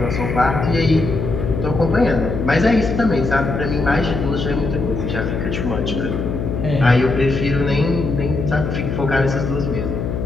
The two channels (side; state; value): left; noise; hum, 3 dB below the sound